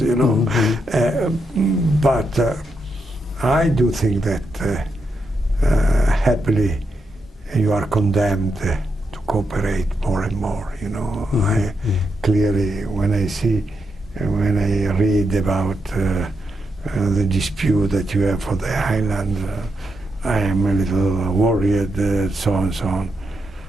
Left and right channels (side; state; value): both; normal; correlation 0.83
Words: But I do think that happily you are condemned to cooperate more and more. I clearly, when I read about the dispute that you have for the island, I am a little worried, so on and so on.